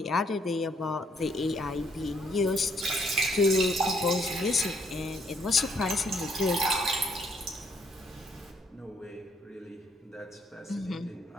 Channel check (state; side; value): normal; both; correlation 0.68